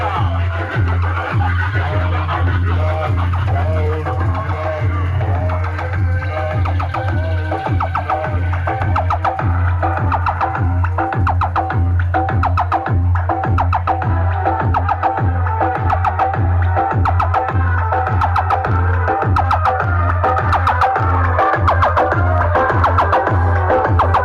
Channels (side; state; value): both; identical; correlation 1.00